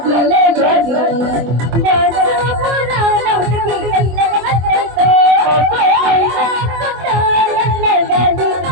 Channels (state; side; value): late; left; 24 ms